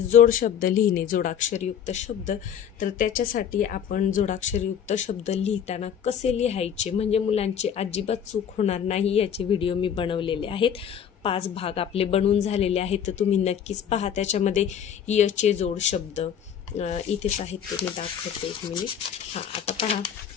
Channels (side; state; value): right; quieter; 8.6 dB